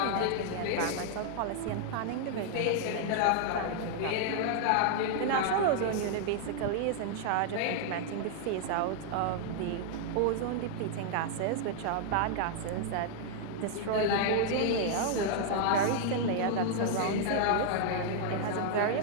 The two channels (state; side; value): different; both; correlation 0.00